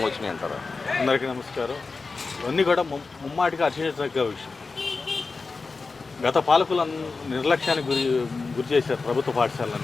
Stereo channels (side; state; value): right; quieter; 4.2 dB